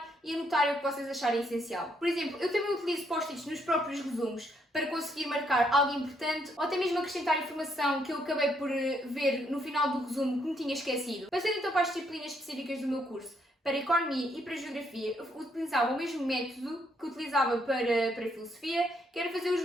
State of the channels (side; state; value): both; normal; correlation 0.73